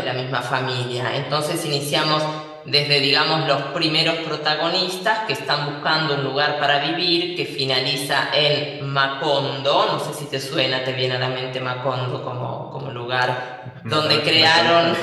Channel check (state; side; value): identical; both; correlation 1.00